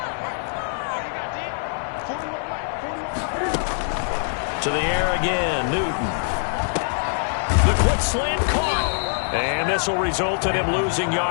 To the air again, Newton. The quick slant caught. And this will result in him losing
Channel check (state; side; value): silent; right; digital silence